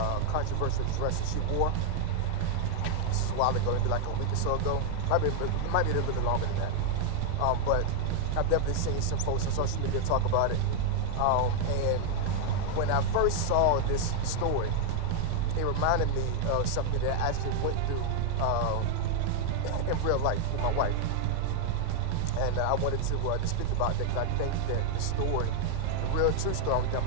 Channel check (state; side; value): different; both; correlation 0.00